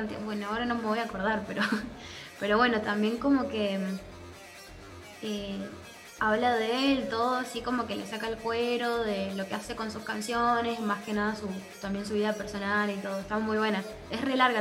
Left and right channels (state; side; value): identical; both; correlation 1.00